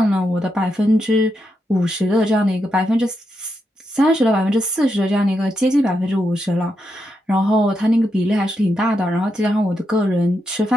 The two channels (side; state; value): both; normal; correlation 0.84